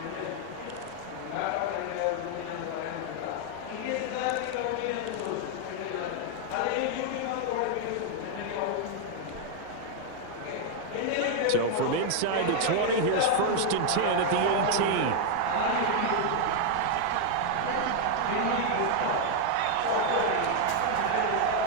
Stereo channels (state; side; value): different; both; correlation 0.00